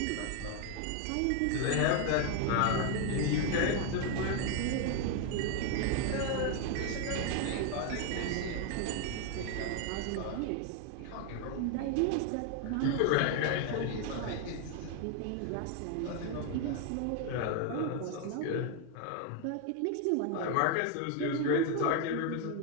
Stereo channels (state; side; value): different; both; correlation 0.01